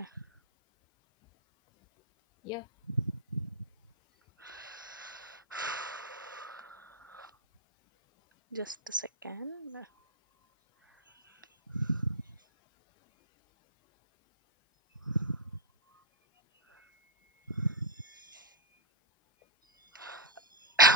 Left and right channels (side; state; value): both; normal; correlation -0.06